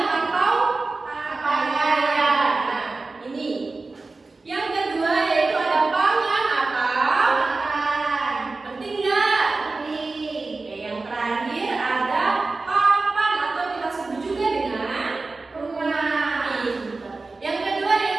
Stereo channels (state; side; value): quieter; left; 3.6 dB